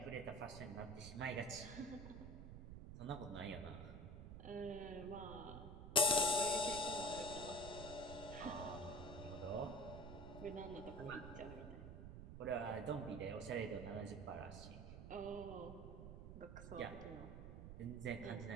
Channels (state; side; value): noise; right; rumble, 10 dB below the sound